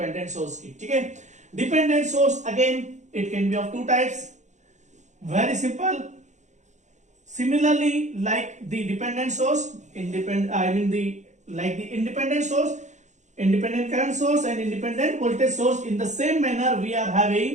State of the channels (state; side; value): late; left; 0.34 ms